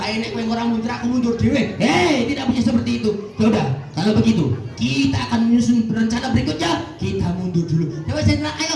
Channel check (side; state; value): both; identical; correlation 1.00